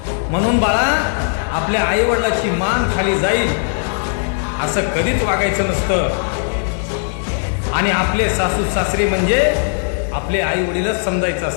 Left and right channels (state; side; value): silent; right; 67 dB below the other